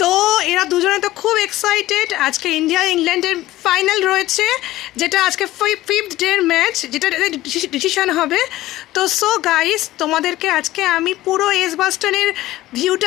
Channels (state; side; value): quieter; right; 16.2 dB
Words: তো এরা দুজনে তো খুব এক্সাইটেড। আজকে ইন্ডিয়া ইংল্যান্ডের ফাইনাল রয়েছে, যেটা আজকে 5th ডের ম্যাচ, যেটা ডিসিশন হবে। তো সো গাইস, তোমাদেরকে আজকে আমি পুরো এজবাস্টনের